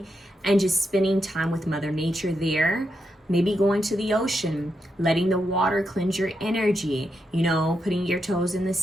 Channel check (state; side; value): normal; both; correlation 0.84